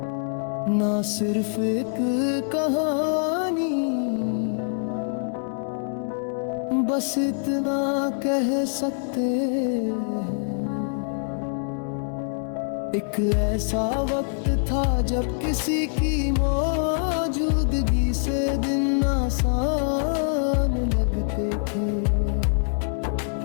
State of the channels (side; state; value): right; silent; 62 dB below the other